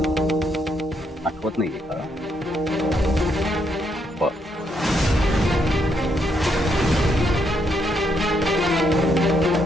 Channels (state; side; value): normal; both; correlation 0.76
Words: आठवत नाहीये का?